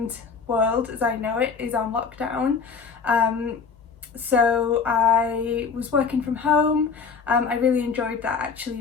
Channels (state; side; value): quieter; right; 5.6 dB